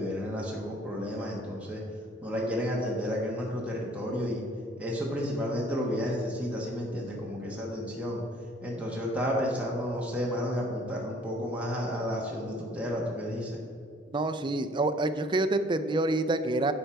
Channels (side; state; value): both; normal; correlation 0.57